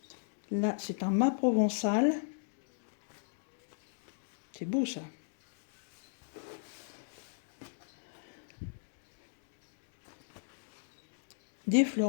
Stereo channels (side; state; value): right; silent; digital silence